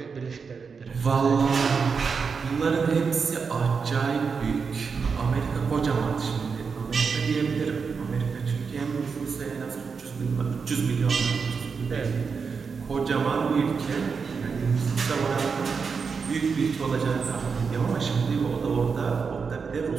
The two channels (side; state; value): left; quieter; 5.5 dB